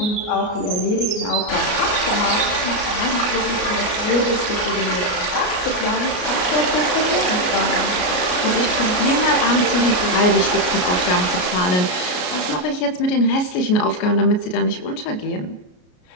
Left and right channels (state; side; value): late; right; 33 ms